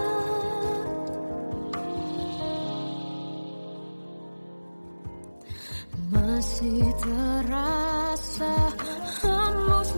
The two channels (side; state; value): both; inverted; correlation -1.00